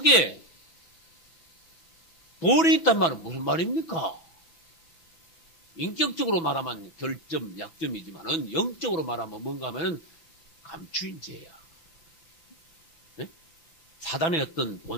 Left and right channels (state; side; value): late; right; 6.1 ms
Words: 돌이 있단 말은 무슨 말입니까? 인격적으로 말하면 결점, 약점이지만은 영적으로 말하면 뭔가 하면은 감추인 죄야. 네? 사단의 어떤